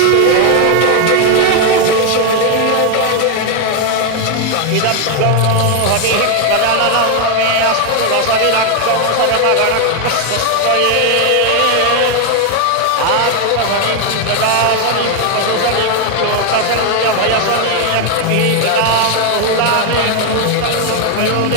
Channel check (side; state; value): both; different; correlation 0.01